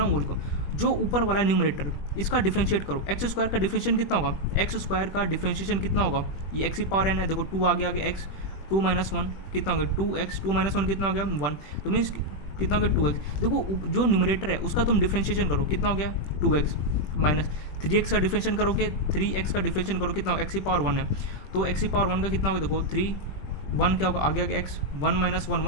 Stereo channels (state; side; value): late; right; 20 ms